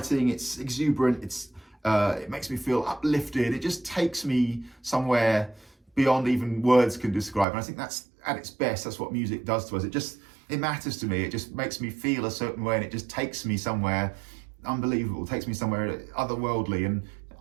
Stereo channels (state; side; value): drops out; left; at 7.5 s